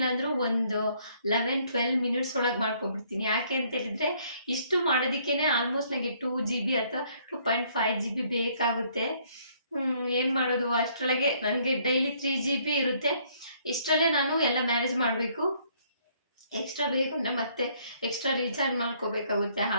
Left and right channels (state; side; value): inverted; both; correlation -0.65